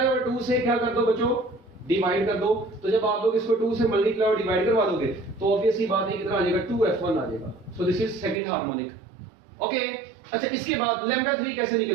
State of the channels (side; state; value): left; drops out; at 8.4 s